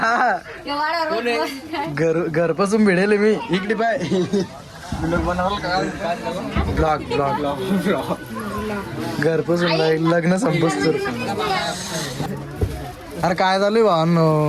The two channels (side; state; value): both; identical; correlation 1.00